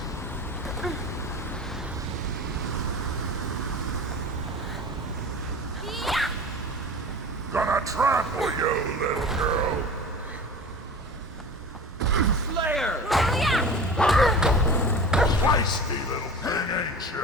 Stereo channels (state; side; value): normal; both; correlation 0.35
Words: Gonna trample you, little girl. Slayer! Feisty little thing, ain't